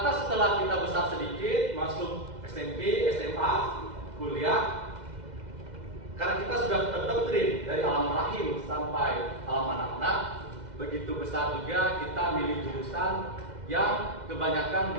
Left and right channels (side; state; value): left; late; 2.0 ms